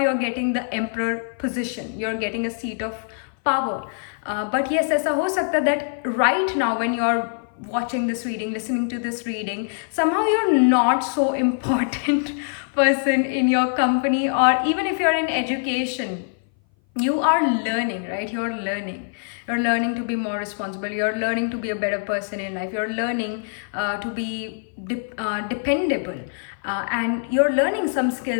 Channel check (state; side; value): silent; right; 58 dB below the other